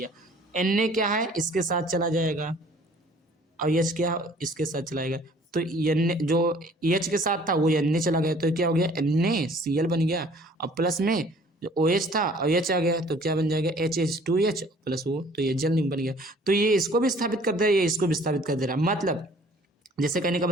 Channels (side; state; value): both; normal; correlation 0.54